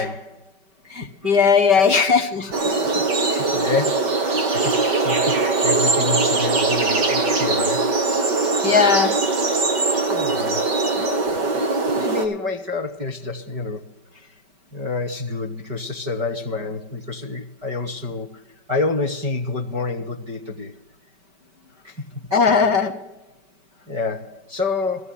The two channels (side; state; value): left; late; 5.2 ms